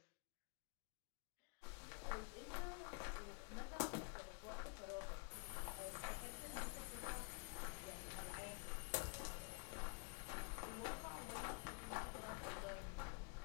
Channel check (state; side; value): quieter; right; 37.0 dB